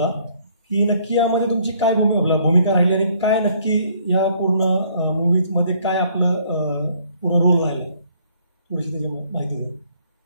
की नक्की यामध्ये तुमची काय भूमिका राहिली आणि काय नक्की या पूर्ण मूवीज मध्ये काय आपलं पूर्ण रोल राहिला, थोडीशी त्याची माहिती द्या.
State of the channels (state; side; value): inverted; both; correlation -0.63